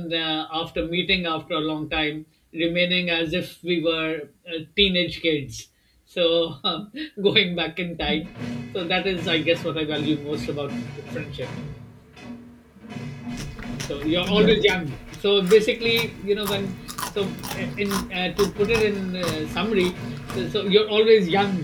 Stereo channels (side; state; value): both; identical; correlation 1.00